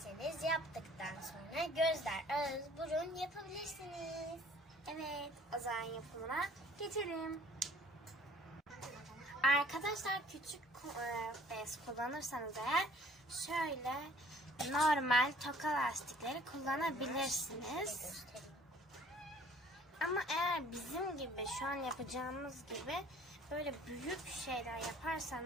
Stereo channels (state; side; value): normal; both; correlation 0.54